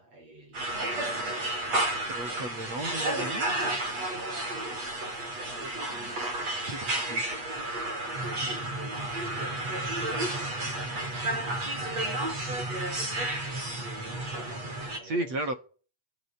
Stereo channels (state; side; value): late; left; 8.3 ms